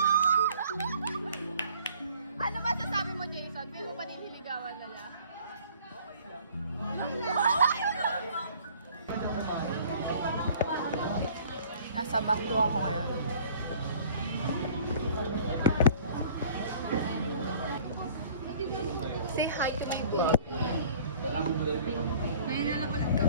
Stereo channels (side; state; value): both; inverted; correlation -0.52